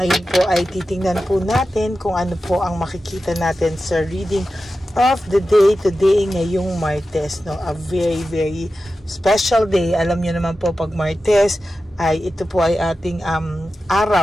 po ay titingnan po natin kung ano po ang makikita natin sa reading of the day today ngayong Martes, no? A very special day. Alam niyo naman po pag Martes ay ito po ay ating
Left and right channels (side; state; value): both; normal; correlation 0.93